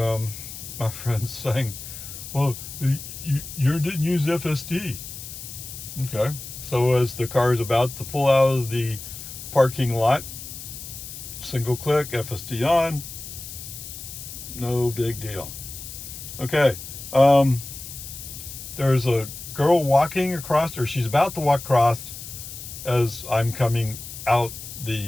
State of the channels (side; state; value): left; noise; hiss, 11 dB below the sound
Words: my friend's saying, well, you didn't use FSD. Okay, so as the car is about to pull out of the parking lot, single click, FSD on, no big deal. Okay, there's a girl walking across, or she's about to walk across as I'm coming out